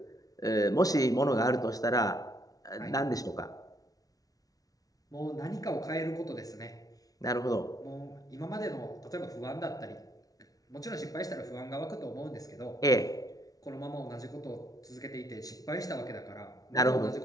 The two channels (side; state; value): right; late; 0.18 ms